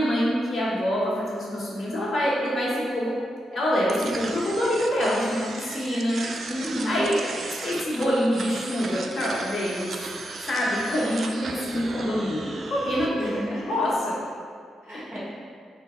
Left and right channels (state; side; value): normal; both; correlation 0.84